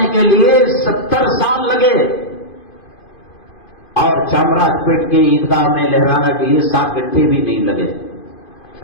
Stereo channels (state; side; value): late; right; 2.5 ms